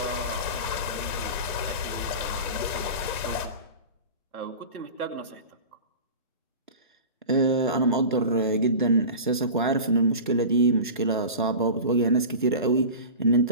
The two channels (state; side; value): inverted; both; correlation -0.33